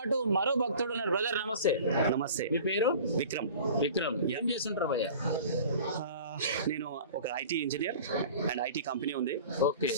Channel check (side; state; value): both; inverted; correlation -0.42